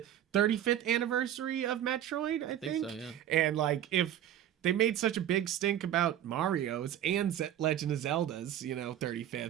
35th anniversary of Metroid, I think. So, yeah. And if they made such a big stink about Mario's and Legend of Zelda's, 35th.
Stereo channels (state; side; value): quieter; left; 11.2 dB